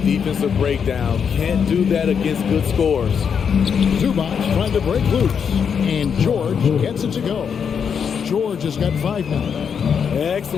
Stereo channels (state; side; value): quieter; right; 7.0 dB